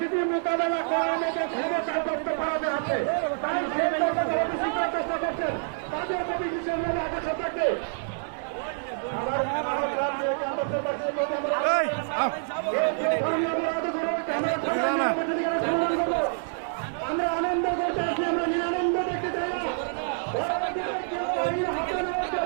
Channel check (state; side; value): silent; left; digital silence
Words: মোকাবেলা করার মতো ক্ষমতা দপ্তর ভারতে আছে, তাই সেই চেষ্টা করছেন তাদের প্রতি বিশেষ আকর্ষণ থাকবে। আমরা আনন্দ করতে আছি, আমরা নিরানন্দ দেখতে চাই না।